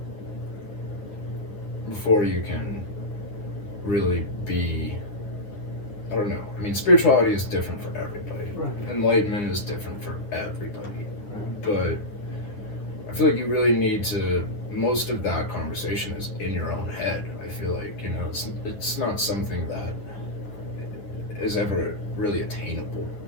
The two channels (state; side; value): late; right; 9.8 ms